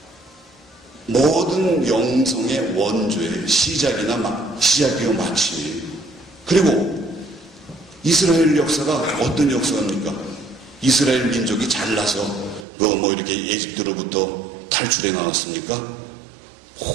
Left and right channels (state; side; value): drops out; left; at 12.7 s